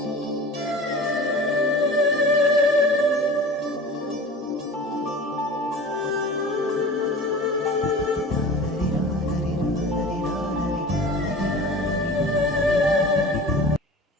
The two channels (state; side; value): normal; both; correlation 0.38